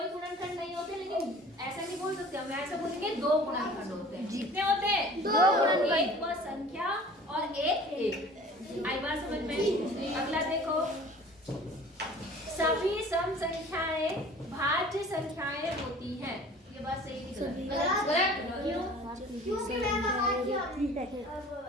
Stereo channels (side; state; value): both; normal; correlation 0.46